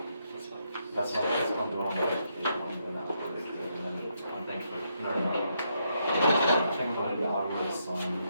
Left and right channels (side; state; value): both; inverted; correlation -0.78